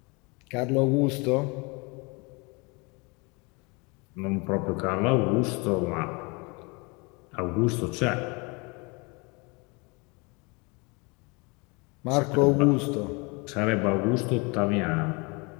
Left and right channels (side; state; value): right; quieter; 29.1 dB